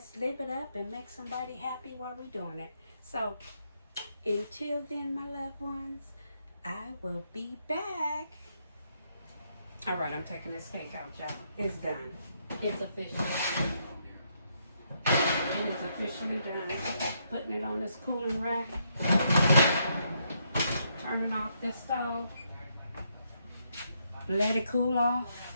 live it up and make somebody happy while we're doing it. So until then, my loved ones, I will be back. All right, I'm taking this cake out, y'all. It's done. It's official. It is officially done. Putting it on this cooling rack. Turning off this stove. Let it cool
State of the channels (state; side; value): inverted; both; correlation -0.76